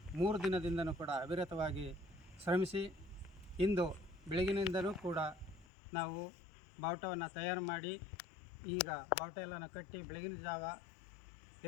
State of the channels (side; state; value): right; drops out; at 5.7 s